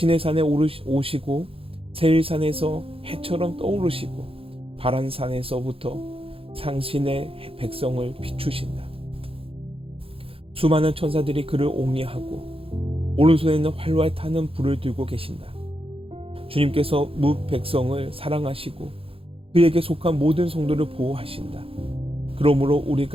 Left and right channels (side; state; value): left; late; 0.27 ms